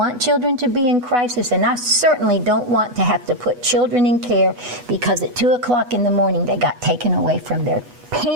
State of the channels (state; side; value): late; left; 8.2 ms